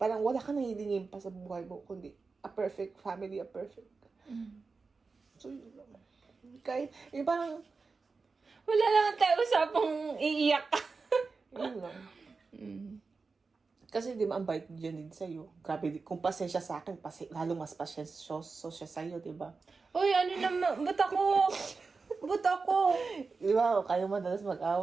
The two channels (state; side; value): quieter; left; 4.4 dB